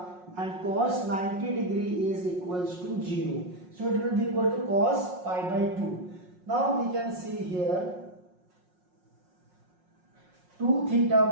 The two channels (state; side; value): late; left; 5.5 ms